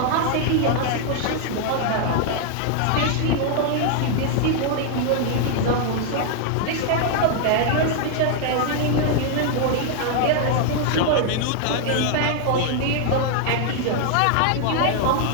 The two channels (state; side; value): different; both; correlation 0.00